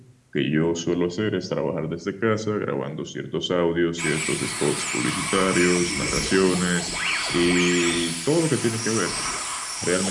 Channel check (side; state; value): both; identical; correlation 1.00